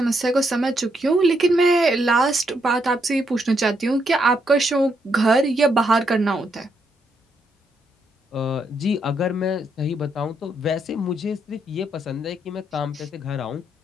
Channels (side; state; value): both; normal; correlation 0.77